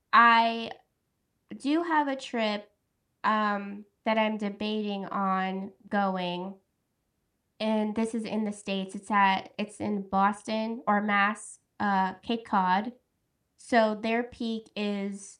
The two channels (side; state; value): both; identical; correlation 1.00